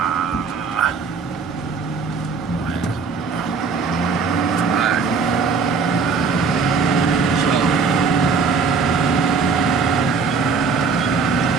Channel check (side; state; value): left; quieter; 5.0 dB